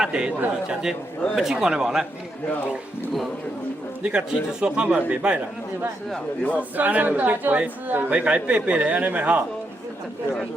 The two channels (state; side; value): normal; both; correlation 0.80